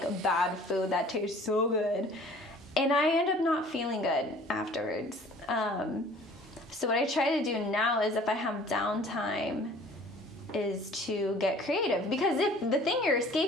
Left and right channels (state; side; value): normal; both; correlation 0.50